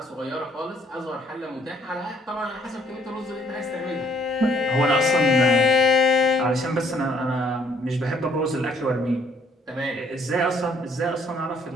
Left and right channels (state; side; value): normal; both; correlation 0.64